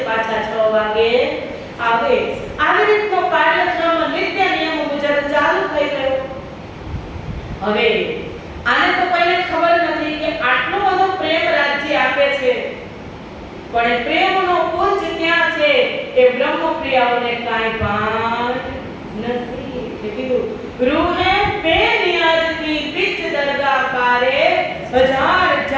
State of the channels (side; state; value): both; identical; correlation 1.00